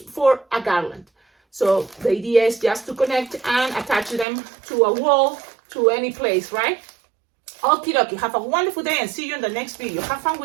a garland. So the idea is just to connect and attach them to a wall, to any place, right? Okie dokie, have a wonderful day and see you in the next video. Have fun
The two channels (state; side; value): drops out; left; at 4.2 s